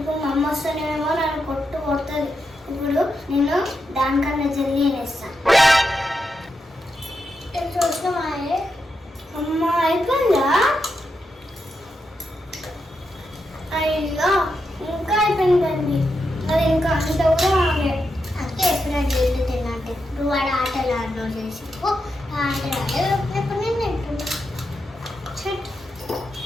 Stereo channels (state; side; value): normal; both; correlation 0.85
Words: మా అమ్మ వస్తేనేమో నన్ను కొడుతుంది. ఇప్పుడు నేను దానికన్నా జల్దీ వేస్తాను. చూసినామా అమ్మ? అయిపోయిందా? అయ్యో ఇంకా అయిపోయిందండి. అది ఇంకా అంత కూడా ఆగే. అంటే ఎప్పుడైనా జల్దీ తిన్నట్టు ఇప్పుడు వాడు ఆటలు ఆడలో చేసి ఆటలు ఎప్పుడు నేను తింటున్నా.